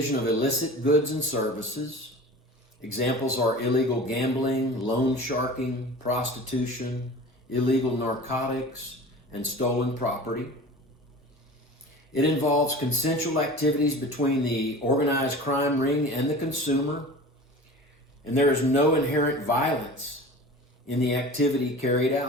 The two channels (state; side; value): normal; both; correlation 0.38